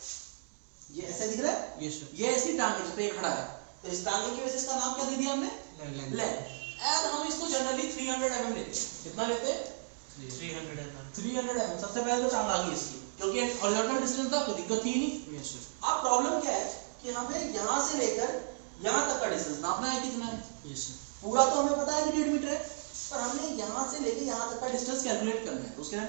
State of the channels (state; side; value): silent; left; digital silence